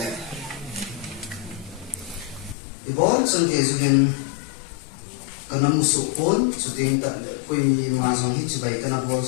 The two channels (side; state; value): right; drops out; at 2.6 s